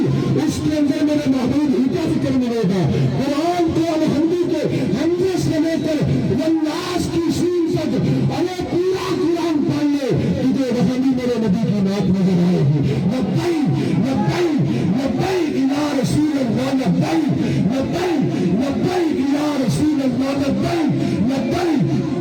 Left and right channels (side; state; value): both; identical; correlation 1.00